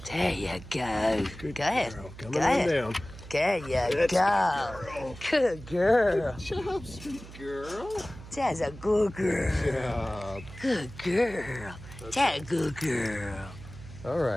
There you go. Good go ahead. Girl. Come go on ahead. down. There you That's go. Good girl. Good job, sweet girl. That's a good girl. Good job. Good girl. That's a good girl. All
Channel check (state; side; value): noise; right; hum, 15 dB below the sound